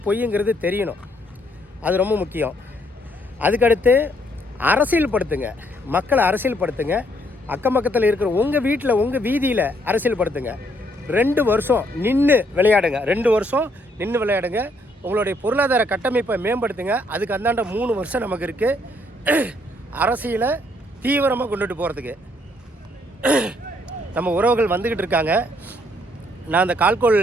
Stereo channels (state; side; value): normal; both; correlation 0.69